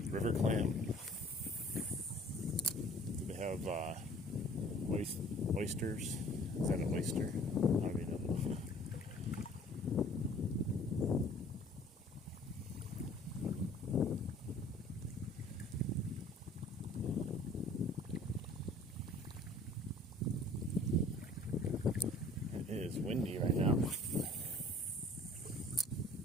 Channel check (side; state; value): both; normal; correlation 0.51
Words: River clam. Do they have oysters? Is that an oyster? I don't even know. It is windy right now.